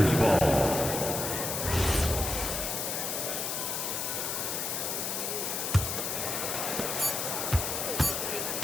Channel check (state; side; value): noise; left; hiss, 2 dB below the sound